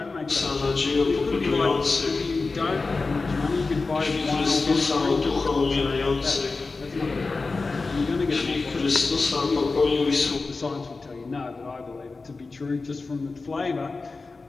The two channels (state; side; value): quieter; right; 3.9 dB